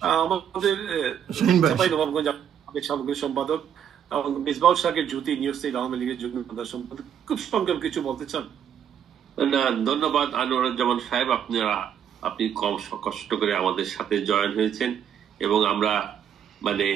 আমাদের সামগ্রিক সম্পাদক মিসবাউল শাকের জ্যোতি, নিউজ স্টেট আওয়ামী লীগের যুগ্ম সম্পাদক, খুব সংক্ষেপ কিছু বলতে চান? না, ধন্যবাদ আনোয়ারুজ্জামান সাহেব, আপনি কম কষ্ট করে আমাদের সাথে জয়েন হয়েছেন এবং আমরা মানে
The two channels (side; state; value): left; quieter; 8.9 dB